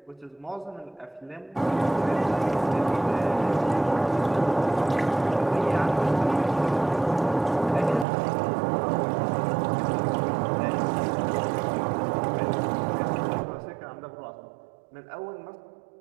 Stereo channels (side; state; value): left; drops out; at 8.1 s